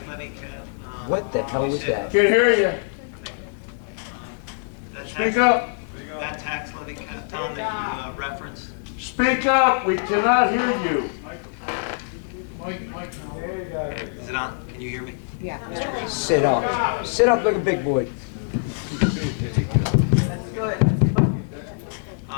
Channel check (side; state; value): right; silent; digital silence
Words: levy cap. What the hell was that? Can't hear you. Speak up. That tax levy cap, Tom, that you referenced. Speak up. We cannot hear you. Is it on? Can you hear me? Yeah. Sit up. Sit up like a big boy.